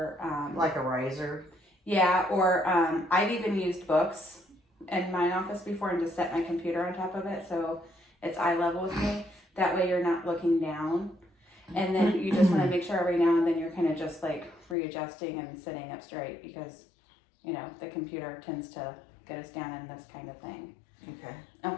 like a riser. Yeah, or I've even used books in my office before and just set my computer on top of it so it's eye level with me. That way you're not looking down. And then you just want to make sure every now and then you're kind of just like readjusting and sitting up straight because, you know, the computer tends to get us down in this kind of thing. Okay.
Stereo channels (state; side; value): drops out; right; at 14.8 s